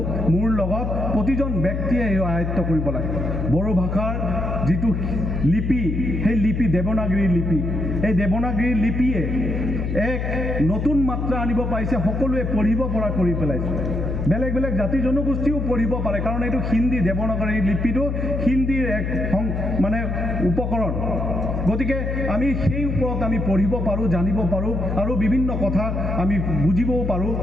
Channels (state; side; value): noise; left; hum, 2 dB below the sound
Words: মোৰ লগত প্ৰতিজন ব্যক্তিয়ে এই আয়ত্ত কৰিব লাগে বড়ো ভাষাৰ যিটো লিপি সেই লিপি দেৱনাগৰী লিপি এই দেৱনাগৰী লিপিয়ে এক নতুন মাত্ৰা আনিব পাৰিছে সকলোৱে পঢ়িব পৰা কৰি পেলাইছে বেলেগ বেলেগ জাতি জনগোষ্ঠীও পঢ়িব পাৰে কাৰণ এইটো হিন্দী দেৱনাগৰী লিপিটো হিন্দীৰ এক মানে উপকৰণ গতিকে আমি সেই ওপৰত আমি পঢ়িব পাৰোঁ জানিব পাৰোঁ আৰু বিভিন্ন কথা আমি বুজিবও পাৰোঁ